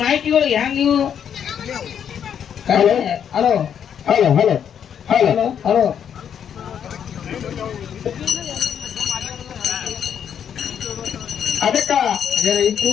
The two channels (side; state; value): right; quieter; 8.5 dB